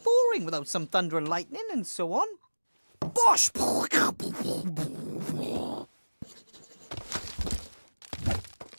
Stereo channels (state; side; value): inverted; both; correlation -1.00